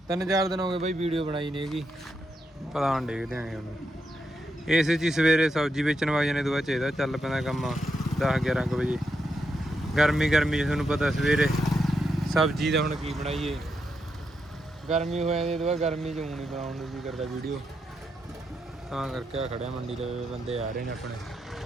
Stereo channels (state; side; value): normal; both; correlation 0.83